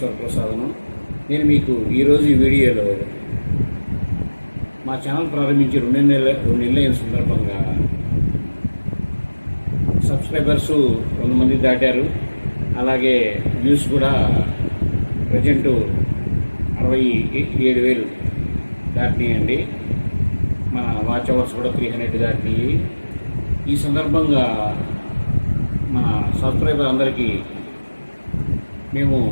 వరప్రసాదను. నేను మీకు ఈరోజు ఈ వీడియోలో మా ఛానల్ ప్రారంభించి రెండు నెలల సందర్భంగా సబ్స్క్రైబర్స్ 100 మంది దాటారు. అలాగే వ్యూస్ కూడా ప్రజెంట్ 67,000 దాటినాయండి. మన వాచ్ అవర్స్ కూడా 300 దాటినాయి. ఈ సందర్భంగా మన సబ్స్క్రైబర్ అందరికీ మేము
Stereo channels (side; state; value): both; inverted; correlation -1.00